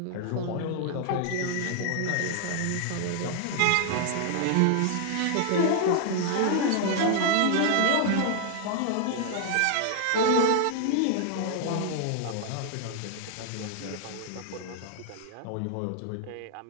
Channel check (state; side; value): different; both; correlation 0.00